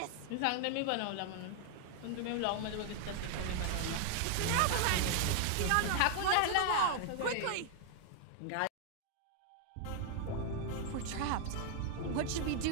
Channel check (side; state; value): both; different; correlation 0.00